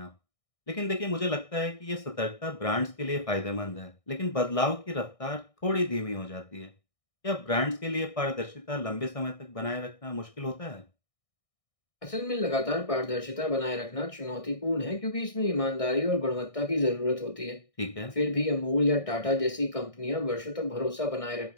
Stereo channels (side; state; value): right; late; 1.6 ms